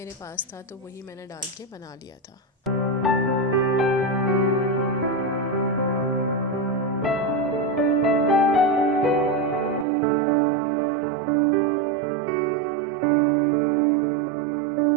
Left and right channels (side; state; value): left; drops out; at 9.9 s